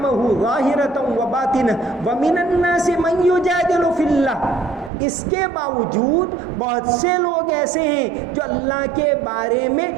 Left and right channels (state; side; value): drops out; left; at 4.9 s